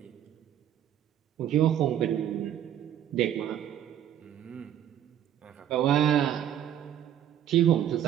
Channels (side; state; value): left; quieter; 10.6 dB